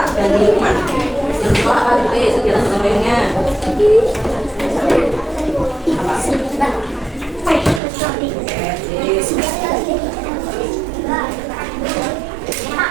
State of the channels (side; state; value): left; drops out; at 7.8 s